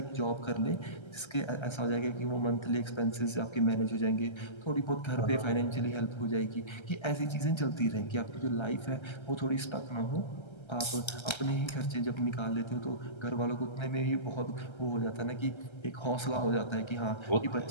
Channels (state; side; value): late; right; 1.3 ms